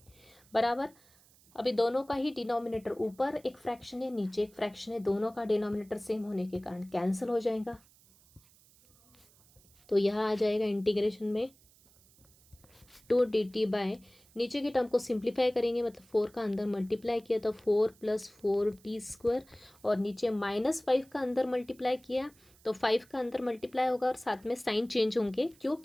बराबर। अभी दोनों का ही डिनोमिनेटर, ऊपर एक फ्रैक्शन है नीचे एक फ्रैक्शन है, दोनों का डिनोमिनेटर सेम होने के कारण कैंसिल हो जाएगा। तो यहाँ आ जाएगा इंटीग्रेशन में 2dt/ नीचे के टर्म को सिंप्लीफाई करेंगे, मतलब 4 का अंदर मल्टीप्लाई किया तो 4 + 4 t², और नीचे -5 का अंदर मल्टीप्लाई किया तो 5 का अंदर मल्टीप्लाई होगा और साथ में साइन चेंज होंगे। क्यों,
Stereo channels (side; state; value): right; noise; hiss, 28 dB below the sound